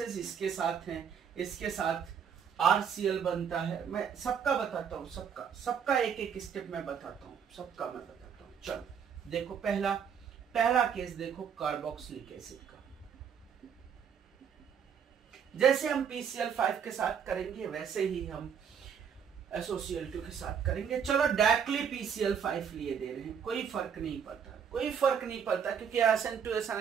इसके साथ हैं, इसके साथ RCl बनता है। मैं सबका बताता हूँ, सबका एक एक स्टेप में बताता हूँ, सबका मैं बताता हूँ। चलो देखो, पहला केस देखो कार्बोक्सिलिक एसिड का। जैसे हम PCl5 के साथ करेंगे वैसे ही हम SOCl2 के साथ करेंगे। चलो डायरेक्टली PCl5 लिए दे रहे हैं, कोई फर्क नहीं पड़ता, कोई फर्क नहीं पड़ता, क्योंकि SN2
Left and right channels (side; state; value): left; quieter; 7.5 dB